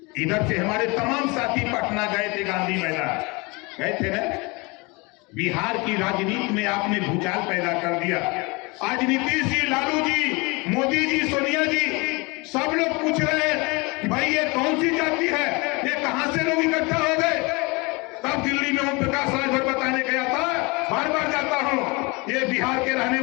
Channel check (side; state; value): right; quieter; 26.8 dB